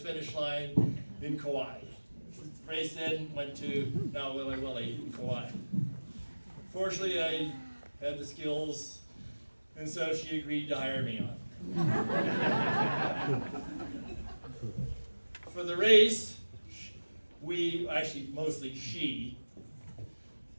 line in Kauai. The race then went to now Willy Willy in Kauai. Fortunately, I had the skills, and so she agreed to hire me on. For the race, mostly she,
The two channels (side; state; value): both; inverted; correlation -1.00